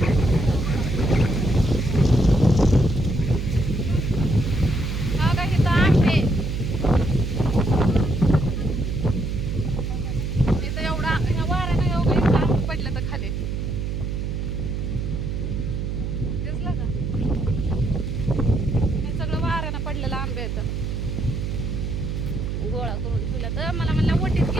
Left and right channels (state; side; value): noise; right; hum, 3 dB below the sound